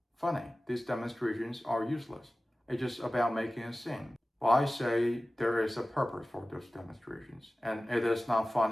funny. These demonstrations are useless. It's just about making a scene. Well, I say there is a purpose for those demonstrations, and it is not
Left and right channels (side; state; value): both; normal; correlation 0.96